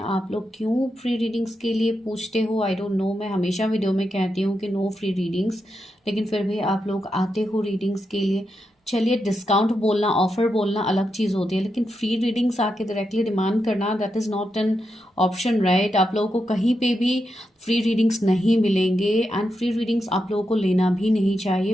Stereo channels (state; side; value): normal; both; correlation 0.86